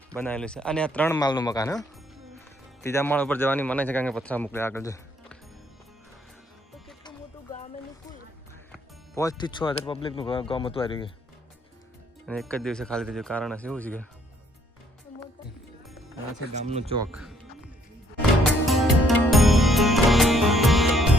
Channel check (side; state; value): both; normal; correlation 0.66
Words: બનાવેલું છે. અને આ 3 માળનું મકાન. હા, 3જા માળ ઉપર જવાની મને છે, કારણ કે પથરા મોકલે આગળ છે. તો કેટલું મોટું ગામ એનું કુલ. 5 થી 6 હજાર પબ્લિકનું ગામ હતું આવી ગયું. અને એક જ દિવસે ખાલી થઈ ગયું. કારણ હશે એવું છે કે આ છે ગામનું ચોક.